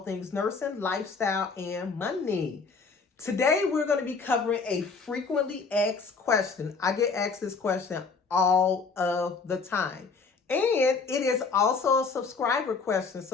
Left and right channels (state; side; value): quieter; right; 4.8 dB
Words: nursing, lifestyle, and money. Today, we're going to be covering a frequently asked question. I get asked this question all of the time. And it is also a subscriber question.